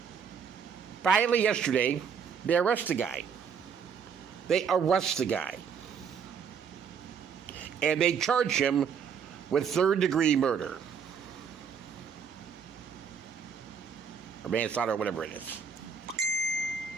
Finally, yesterday, they arrest the guy. And they charge him with third-degree murder. Or manslaughter, or whatever it is.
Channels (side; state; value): left; quieter; 6.8 dB